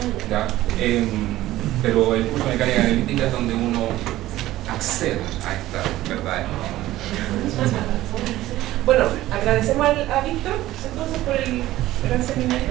¿ya? Pero el curso de mecánica analítica es donde uno accede a esta verdad. Bueno, agradecemos a Víctor entonces por el gran seminario.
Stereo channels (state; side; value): quieter; left; 15.5 dB